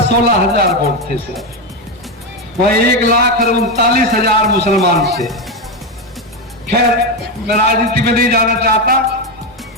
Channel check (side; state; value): both; normal; correlation 0.11